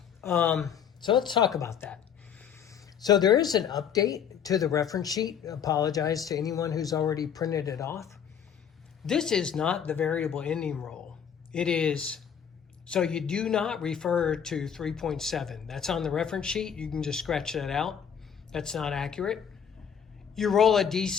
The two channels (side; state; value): right; quieter; 8.0 dB